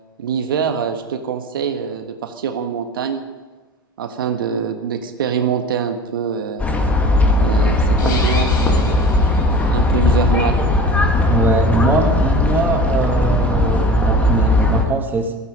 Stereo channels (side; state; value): both; normal; correlation 0.38